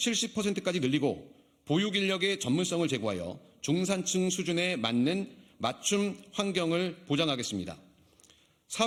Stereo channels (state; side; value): identical; both; correlation 1.00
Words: 늘리고 보육 인력의 전문성을 제고하여 중산층 수준에 맞는 맞춤 환경을 보장하겠습니다.